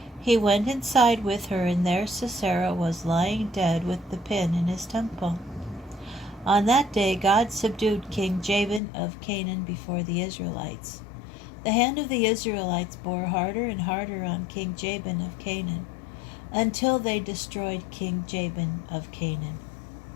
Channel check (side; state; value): right; drops out; at 8.8 s